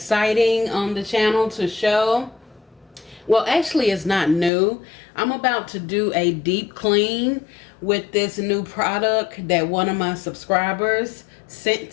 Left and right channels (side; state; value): right; drops out; at 4.5 s